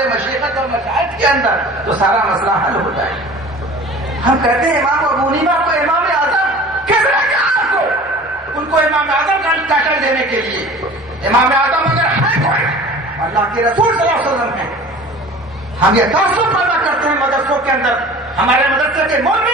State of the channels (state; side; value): normal; both; correlation 0.42